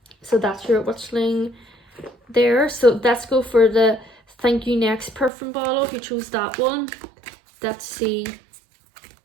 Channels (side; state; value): left; drops out; at 5.3 s